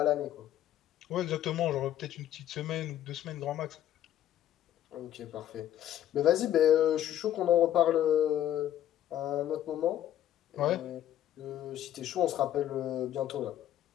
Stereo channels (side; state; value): right; quieter; 11.6 dB